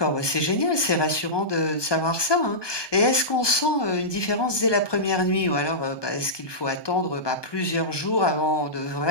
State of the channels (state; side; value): late; right; 1.2 ms